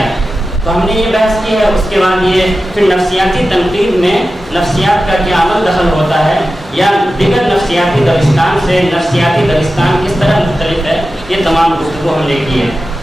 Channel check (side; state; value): both; normal; correlation 0.93